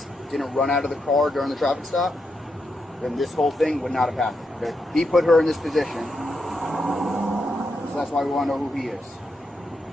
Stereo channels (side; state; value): both; normal; correlation 0.83